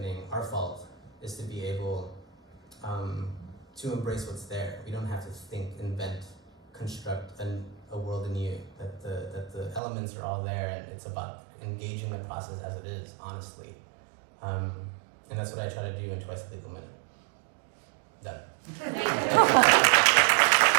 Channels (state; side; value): drops out; left; at 9.8 s